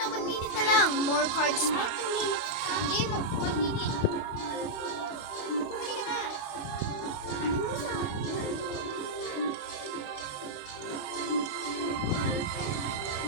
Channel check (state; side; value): late; right; 28 ms